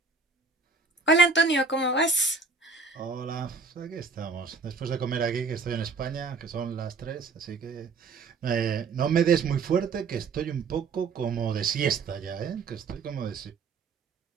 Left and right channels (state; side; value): quieter; left; 4.6 dB